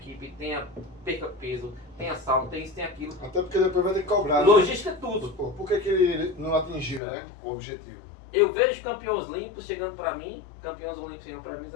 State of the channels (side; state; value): right; drops out; at 7.0 s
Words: perca peso, tenha sauna, tenha isso, tenha aquilo. Até porque depois vai ter que cobrar. Né? Logística é tudo. Pô, por que ele não atingiu, né? O objetivo? Eu vejo campeões olímpicos chegando para mim, campeões olímpicos chegando para mim e